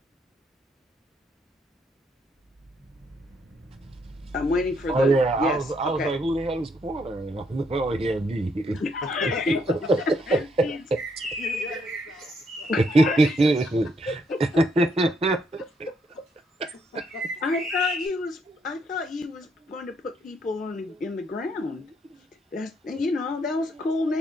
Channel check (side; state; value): both; normal; correlation 0.73